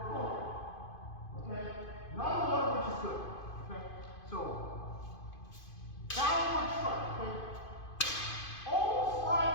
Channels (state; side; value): late; right; 2.5 ms